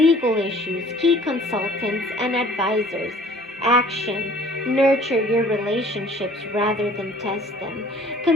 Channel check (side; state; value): both; normal; correlation 0.52